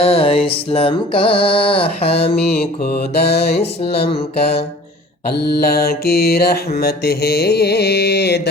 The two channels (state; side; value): normal; both; correlation 0.46